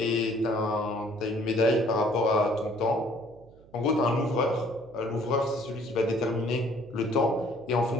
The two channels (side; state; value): right; noise; hum, 25 dB below the sound